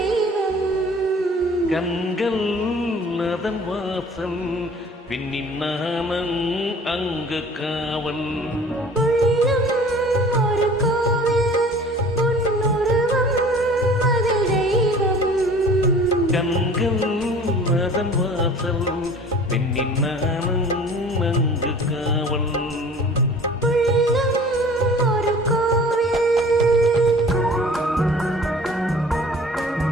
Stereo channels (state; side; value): normal; both; correlation 0.47